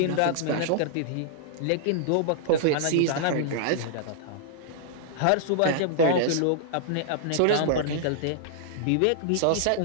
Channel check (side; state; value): both; different; correlation -0.01